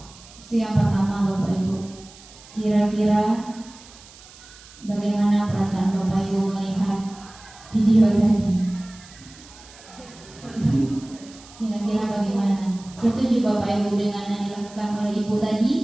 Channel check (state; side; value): noise; right; hiss, 21 dB below the sound